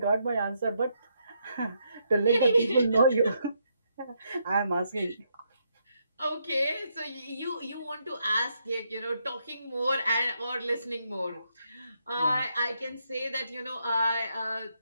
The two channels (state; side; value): inverted; both; correlation -0.77